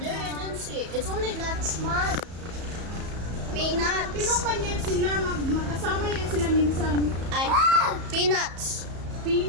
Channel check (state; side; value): late; left; 34 ms